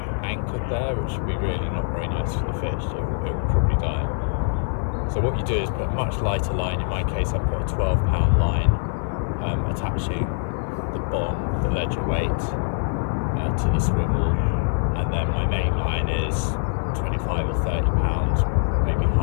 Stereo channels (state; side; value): silent; right; digital silence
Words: anchored there, which would be really not very nice for the fish. It will probably die. So what you do is put a much lighter line. In my case, I put a 12-pound line, attaching the bomb, the ledger weight, to the swivel, and then my main line is 25 or 30 pounds, maybe